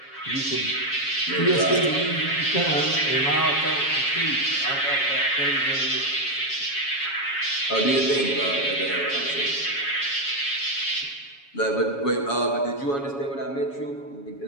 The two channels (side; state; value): right; late; 7.2 ms